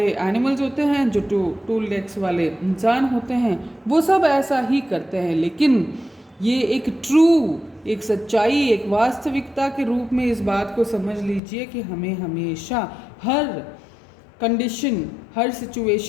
एनिमल्स होते हैं, जो 2 legs वाले इंसान होते हैं, वो सब ऐसा ही करते हैं। लेकिन ये एक ट्रू, एक सच्चाई, एक वास्तविकता के रूप में इस बात को समझ लीजिए कि हमें हमेशा हर कंडीशन, हर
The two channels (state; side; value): drops out; right; at 11.4 s